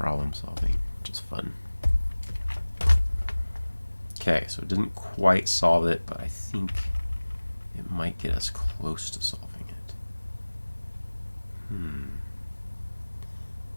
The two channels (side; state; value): both; inverted; correlation -1.00